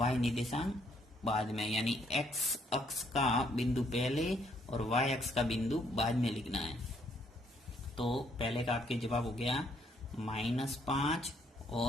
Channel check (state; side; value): normal; both; correlation 0.69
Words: निर्देशांक बाद में, यानी एक्स अक्ष का बिंदु पहले और वाई अक्ष का बिंदु बाद में लिखना है। तो पहले का आपके जवाब हो गया -5